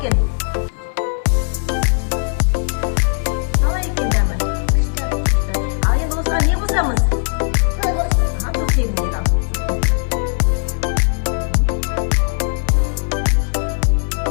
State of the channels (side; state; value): right; silent; 56 dB below the other